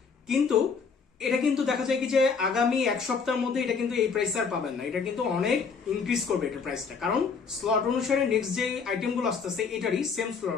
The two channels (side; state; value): right; quieter; 5.5 dB